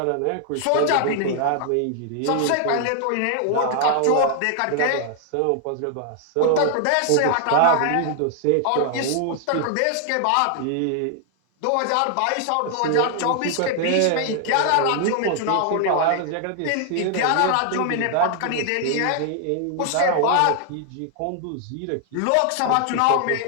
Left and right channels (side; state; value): both; different; correlation 0.00